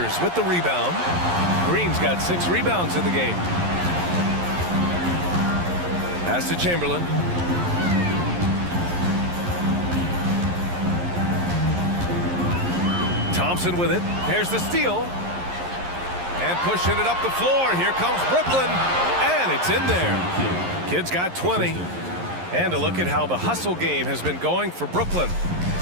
with the rebound. Green's got 6 rebounds in the game. Pass to Chamberlain. Thompson with it. There's the steal. And pushing it up the floor. Here comes Brooklyn. And it's in there. Kid's got 20. And a look at how the hustle game has been going for Brooklyn.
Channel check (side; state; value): left; late; 11 ms